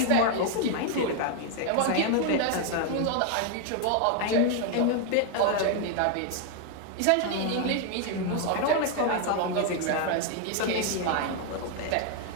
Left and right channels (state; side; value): different; both; correlation 0.00